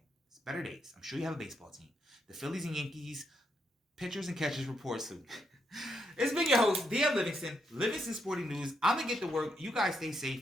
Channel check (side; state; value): both; normal; correlation 0.79